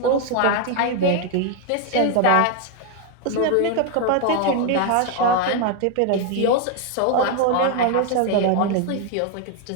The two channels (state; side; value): different; both; correlation 0.01